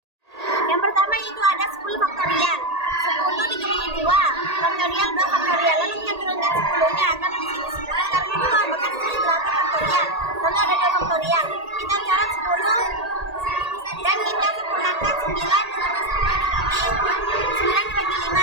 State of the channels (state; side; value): late; left; 1.8 ms